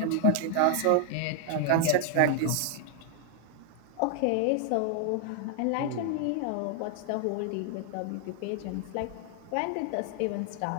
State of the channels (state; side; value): different; both; correlation 0.00